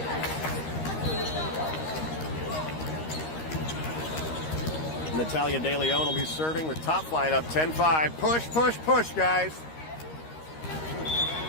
Natalia De Leon will be serving with top flight up 10-5. Push, push, push, guys.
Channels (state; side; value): late; right; 13 ms